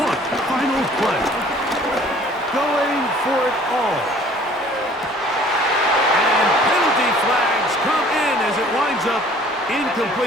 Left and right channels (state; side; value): normal; both; correlation 0.53